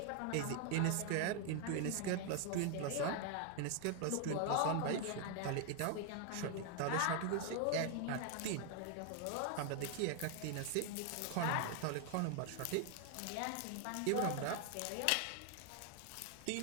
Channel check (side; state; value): both; different; correlation 0.00